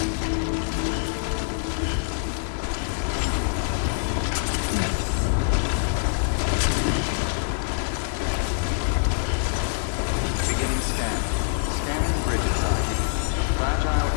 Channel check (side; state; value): right; silent; 59 dB below the other